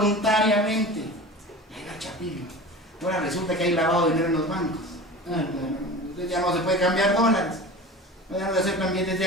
Y ahí va el Chapín. Ahora resulta que hay lavado de dinero en los bancos. Entonces ya no se puede cambiar dólares. Ya no se aceptan billetes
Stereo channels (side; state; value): both; normal; correlation 0.35